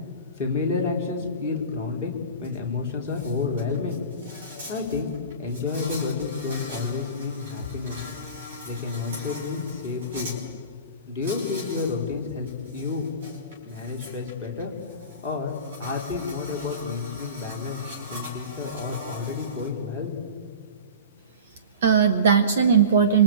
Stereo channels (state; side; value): inverted; both; correlation -0.35